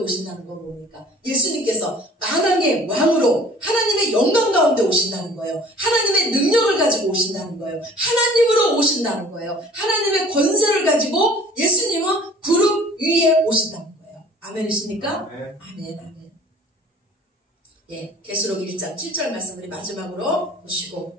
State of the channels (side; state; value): both; normal; correlation 0.49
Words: 건 뭡니까? 예수님께서 만왕의 왕으로 하나님의 영광 가운데 오신다는 거예요. 하나님의 능력을 가지고 오신다는 거예요. 하나님으로 오신다는 거예요. 하나님의 권세를 가지고 예수님은 구름 위에 오신다는 거예요. 아멘이십니까? 아멘, 아멘. 예, 계시록 1장 7절 말씀 우리 마지막으로